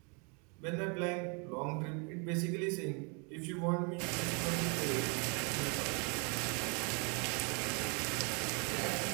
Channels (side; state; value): left; quieter; 34.6 dB